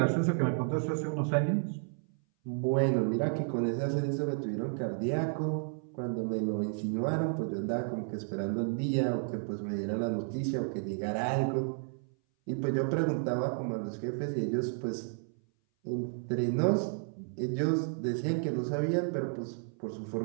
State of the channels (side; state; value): left; silent; 56 dB below the other